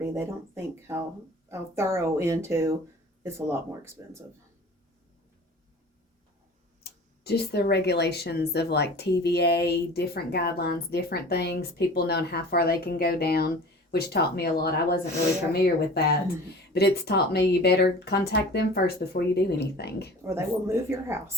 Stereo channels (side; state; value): both; normal; correlation 0.42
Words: They don't think how thorough into it's a lot more expensive. Just the regulations of like TVA, different guidelines, different things, people knowing how far they can go down, which taught me a lot. I wasn't really familiar with that, but it's taught me you better contact them first before you do anything. Or they will move your